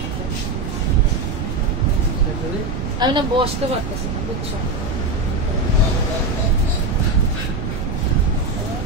আমি না বসতে পারতেছি না, বুঝছো।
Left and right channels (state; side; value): noise; right; rumble, 4 dB below the sound